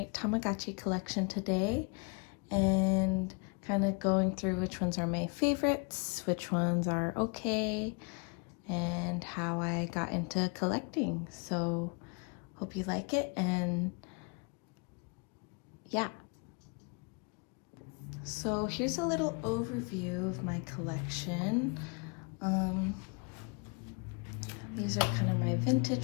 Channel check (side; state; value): right; quieter; 33.9 dB